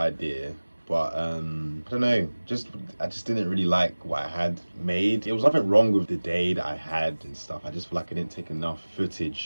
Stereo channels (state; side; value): inverted; both; correlation -1.00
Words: but I don't know, I just didn't really like what I had made. There was nothing wrong with the day that I had and stuff. I just feel like I didn't take enough